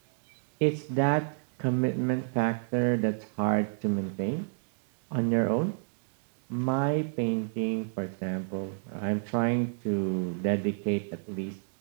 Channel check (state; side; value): silent; left; digital silence